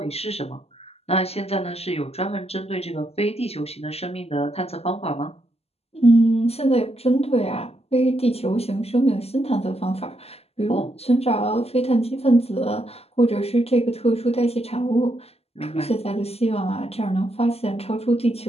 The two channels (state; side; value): late; right; 0.29 ms